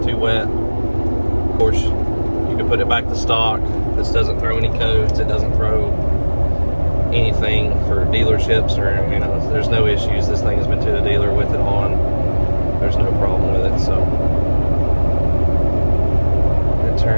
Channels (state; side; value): inverted; both; correlation -1.00